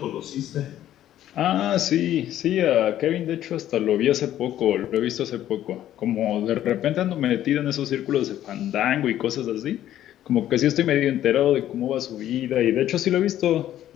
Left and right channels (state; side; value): quieter; right; 12.2 dB